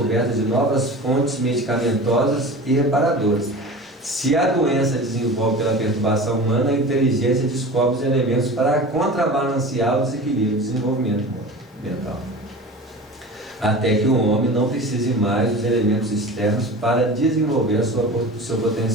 de novas fontes medicamentosas e reparadoras. Se a doença desenvolve pela perturbação humana, a inteligência descobre os elementos para contrabalancear o desequilíbrio do desenvolvimento mental. Até que o homem não precise mais dos elementos externos para desenvolver o seu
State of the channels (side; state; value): both; normal; correlation 0.35